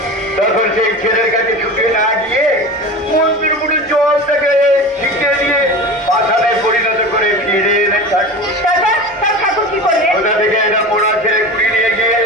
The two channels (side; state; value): both; normal; correlation 0.31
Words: তখন সেই ছেলের কাছে ছুটে না গিয়ে মন্দির মুড়ে জল থেকে ছিটিয়ে দিয়ে পাথানে পরিণত করে ফিরে এলেন ঠাকুর। কোথা থেকে একটা পোড়া ছেলে কুড়ি নিয়ে গিয়ে